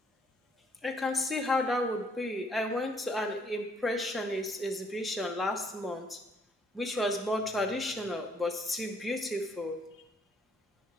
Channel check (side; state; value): both; normal; correlation 0.67